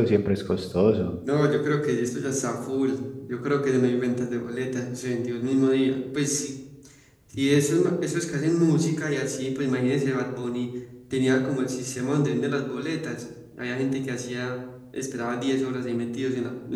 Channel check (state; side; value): identical; both; correlation 1.00